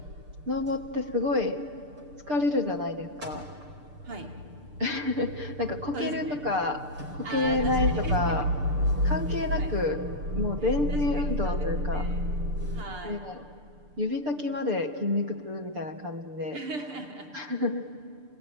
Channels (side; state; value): left; late; 6.8 ms